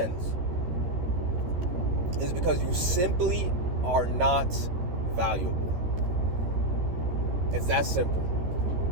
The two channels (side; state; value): left; late; 13 ms